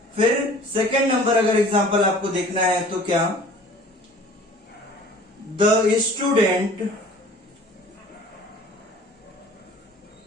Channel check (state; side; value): normal; both; correlation 0.48